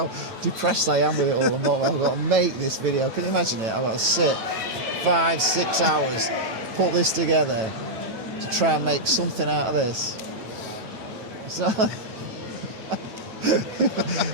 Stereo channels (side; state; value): left; late; 9.1 ms